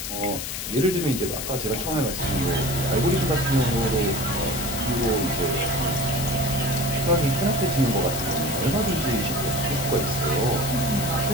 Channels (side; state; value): left; noise; hiss, 5 dB below the sound